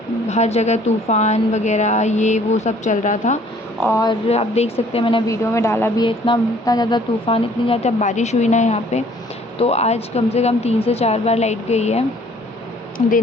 हर जगह तूफ़ान वगैरह ये वो सब चल रहा था और आप देख सकते हैं मैंने वीडियो में डाला भी है, इतना इतना ज़्यादा तूफ़ान, इतनी ज़्यादा बारिश हुई ना यहाँ पे। तो आज कम से कम 3 से 4 बार लाइट गई है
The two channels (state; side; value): normal; both; correlation 0.57